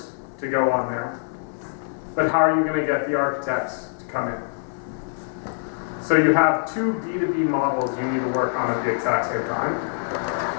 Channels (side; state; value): right; silent; digital silence